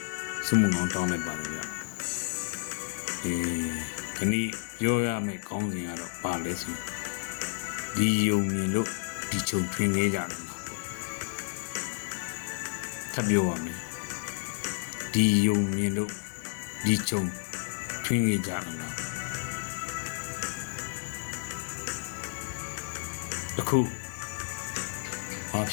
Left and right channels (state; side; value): silent; right; 57 dB below the other